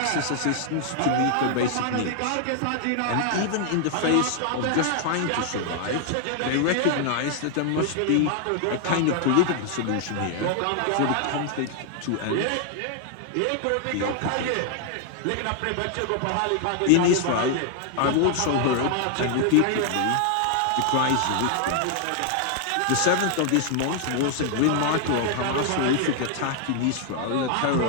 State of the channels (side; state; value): both; different; correlation 0.00